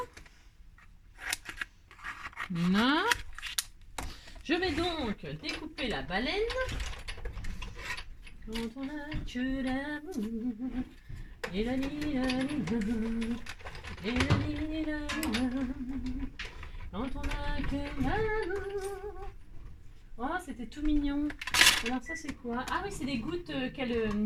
Voilà. Je vais donc découper la baleine. Quand on a que l'amour, et la quand on a que l'amour. Oh, c'était tout mignon. Alors ça c'est quoi? Ah oui, c'est des gouttes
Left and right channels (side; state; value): both; identical; correlation 1.00